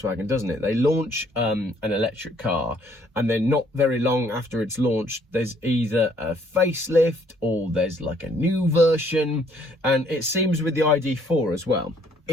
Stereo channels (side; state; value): both; normal; correlation 0.65